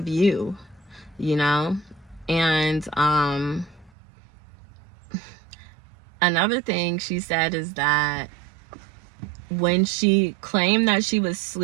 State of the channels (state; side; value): drops out; left; at 3.9 s